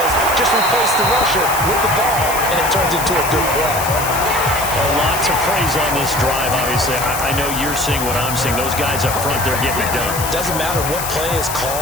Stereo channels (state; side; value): noise; left; hiss, 6 dB below the sound